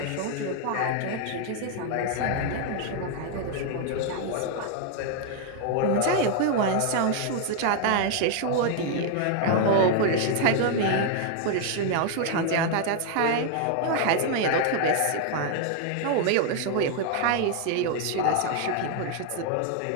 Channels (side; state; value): both; different; correlation 0.00